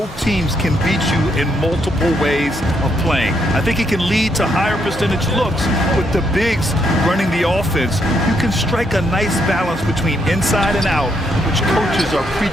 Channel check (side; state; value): both; normal; correlation 0.75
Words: teams can beat you in multiple ways of playing. I think it can lead to higher percentage looks with the bigs running the offense. You can strike a nice balance between inside and out, which coaches are